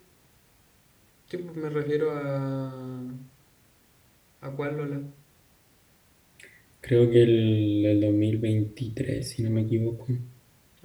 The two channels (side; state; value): both; identical; correlation 1.00